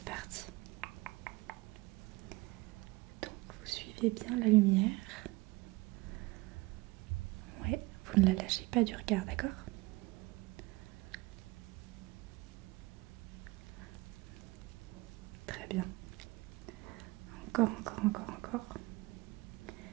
parti. Donc, vous suivez bien la lumière. Ouais, vous ne la lâchez pas du regard, d'accord? Très bien. Encore.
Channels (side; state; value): left; quieter; 21.8 dB